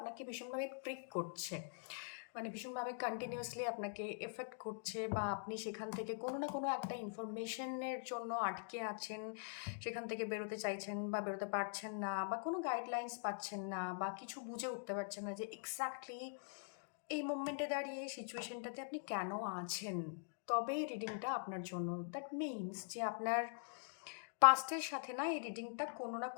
ভীষণভাবে প্রিক করছে, মানে ভীষণভাবে কন্টিনিউয়াসলি আপনাকে এফেক্ট করছে, বা আপনি সেখান থেকে কোনো না কোনো একটা ইনফরমেশনের জন্য আটকে আছেন, সেখান থেকে বেরোতে চাইছেন বা বেরোতে পারছেন না, বা কোনো গাইডলাইন্স পাচ্ছেন না, বা কিছু বুঝে উঠতে পারছেন না যে এক্স্যাক্টলি এই মোমেন্টে দাঁড়িয়ে সিচুয়েশনটাতে আপনি কেন আছেন, তবে এই রিডিংটা আপনার জন্য। দ্যাট মিনস যে আপনার পাস্টের সাথে না এই রিডিংটা কোনো না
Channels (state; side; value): silent; right; digital silence